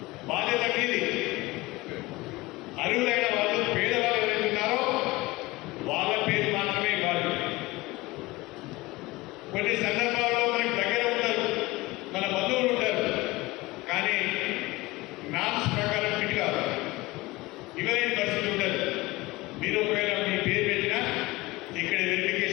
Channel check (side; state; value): right; quieter; 21.0 dB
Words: బాధ్యత మీది. అర్హులైన మీరు ఒకవేళ మీ పేరు పెట్టినా ఇక్కడ